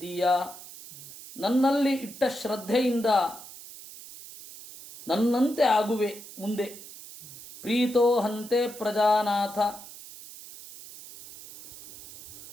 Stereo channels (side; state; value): right; noise; hiss, 16 dB below the sound